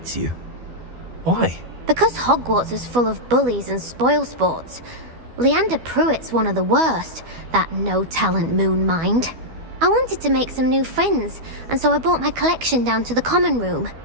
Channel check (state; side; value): late; left; 12 ms